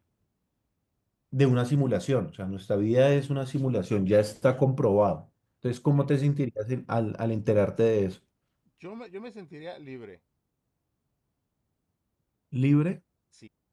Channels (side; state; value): both; identical; correlation 1.00